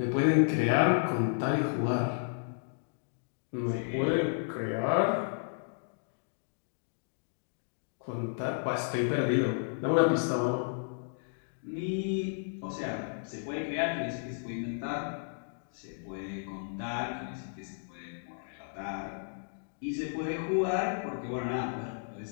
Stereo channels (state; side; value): silent; right; digital silence